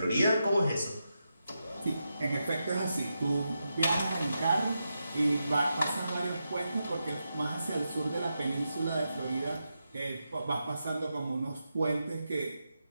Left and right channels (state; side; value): inverted; both; correlation -0.87